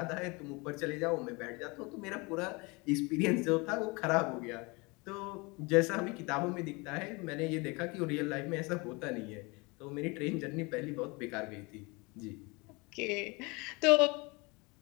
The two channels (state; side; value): quieter; right; 27.1 dB